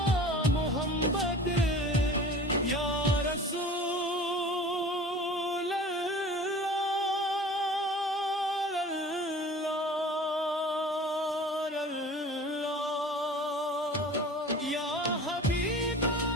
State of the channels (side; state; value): both; normal; correlation 0.42